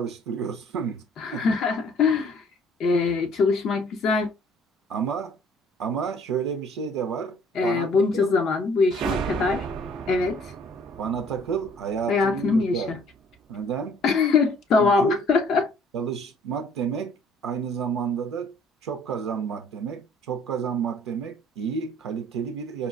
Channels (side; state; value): both; normal; correlation 0.57